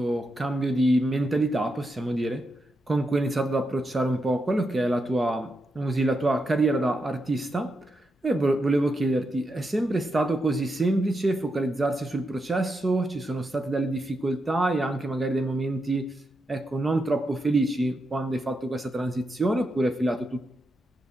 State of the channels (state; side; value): normal; both; correlation 0.85